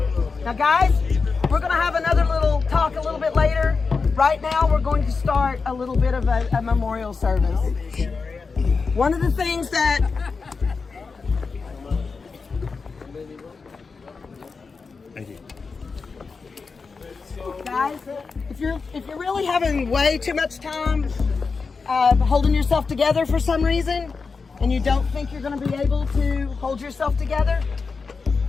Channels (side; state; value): right; quieter; 4.7 dB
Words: Now, guys, we're going to have another little talk a little bit later. Right now, we're going to start a little bit of a memorial service. One of the things that Thank you. guys, if you're really having way too much time holding yourself together for some reason, and you don't think you're going to be able to hold yourself together,